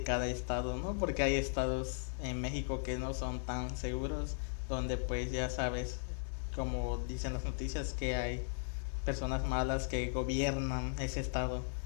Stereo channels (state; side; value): silent; right; 53 dB below the other